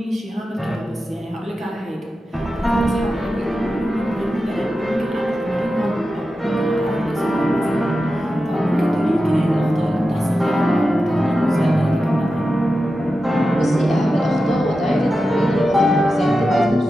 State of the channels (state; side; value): normal; both; correlation 0.92